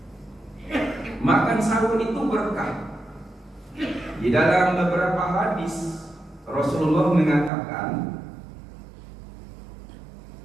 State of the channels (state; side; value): drops out; left; at 7.5 s